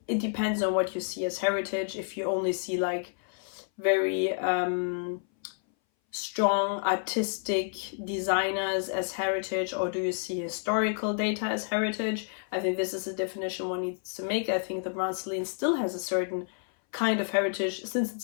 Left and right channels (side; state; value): right; silent; 57 dB below the other